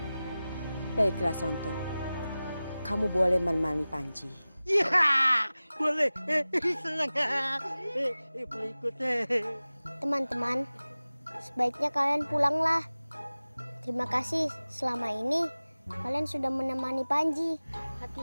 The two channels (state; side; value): inverted; both; correlation -0.97